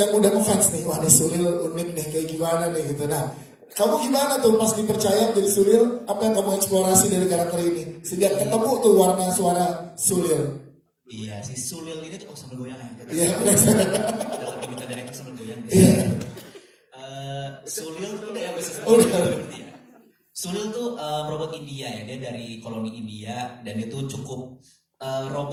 yang udah ngefans nih. Wah, ini Sulil unik nih, kayak gimana nih gitu. Nah, kamu gimana tuh pas dipercaya jadi Sulil? Apa yang kamu eksplorasi dari karakter ini? Sejak ketemu tuh warna suara Sulil. Iya, si Sulil ini tuh sambil goyang ya. Iya, Dalam kita dari itu sambil goyang. iya. Sulil tuh yang bisa Oh, udah. seperti ya. Sulil tuh robot India ya, dia dari koloni India dan itu cukup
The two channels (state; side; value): identical; both; correlation 1.00